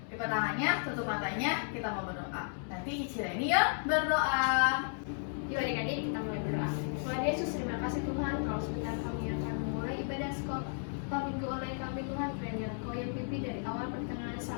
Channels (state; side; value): silent; right; digital silence